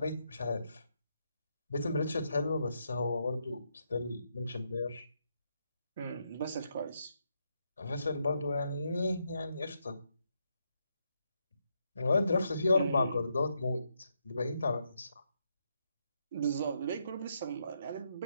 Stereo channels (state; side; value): inverted; both; correlation -0.79